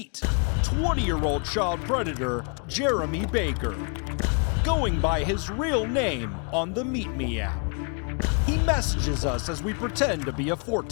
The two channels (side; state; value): right; quieter; 38.2 dB